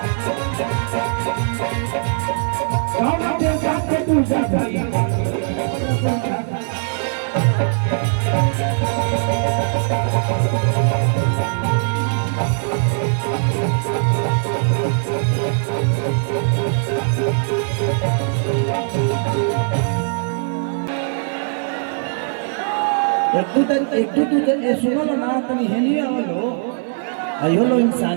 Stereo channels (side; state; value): left; silent; 61 dB below the other